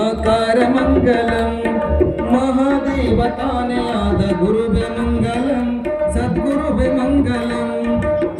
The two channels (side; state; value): both; identical; correlation 1.00